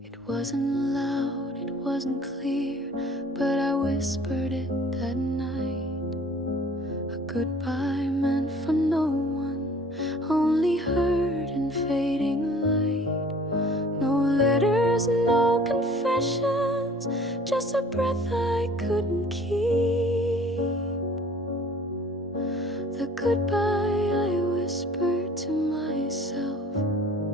It wasn't loud, it wasn't clear, but I whispered it that night. A goodbye meant for no one, only heard in fading light. No letters, no confessions, just a breath I couldn't keep. The goodbye I whispered to myself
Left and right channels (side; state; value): both; normal; correlation 0.50